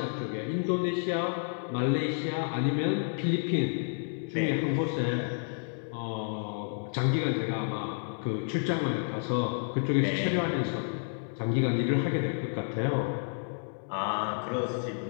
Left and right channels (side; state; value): right; silent; 58 dB below the other